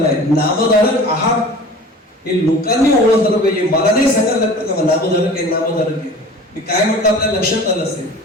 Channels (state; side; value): normal; both; correlation 0.41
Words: नामधारक आहात हे लोकांनी ओळखलं पाहिजे. मला नाही सांगायला लागतं का नामधारक आहे. मी काय म्हटलं आपल्या लक्षात आलं असेल,